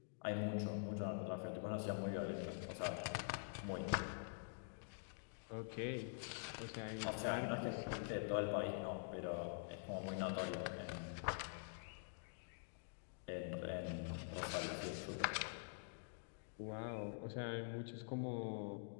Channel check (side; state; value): right; silent; digital silence